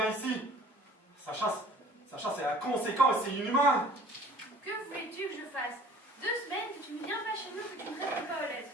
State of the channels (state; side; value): normal; both; correlation 0.50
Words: ici. Sacha, c'est inconséquent et c'est inhumain. Que voulais-tu que je fasse? 2 semaines que tu ne viens pas chez nous, que tu ne réponds pas aux lettres.